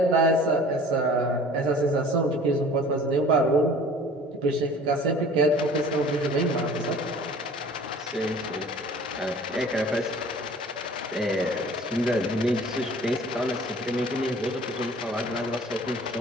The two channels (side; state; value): both; normal; correlation 0.47